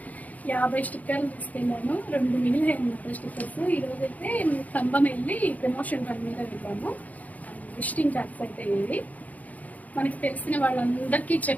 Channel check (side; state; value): right; late; 0.076 ms